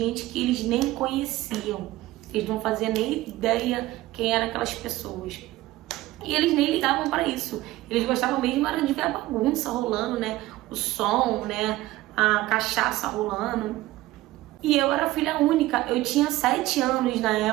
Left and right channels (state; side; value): quieter; left; 17.2 dB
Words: que eles nem conheciam. Eles não faziam nem ideia quem eram aquelas pessoas. E eles nem ligavam para isso. Eles gostavam mesmo era de ver a bagunça rolando, né? O som, né? A cachaça rolando. E eu era filha única, eu tinha 7 anos na